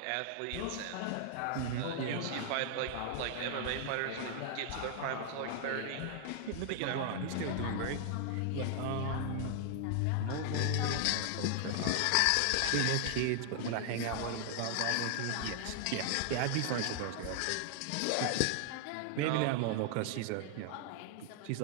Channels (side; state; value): both; different; correlation 0.00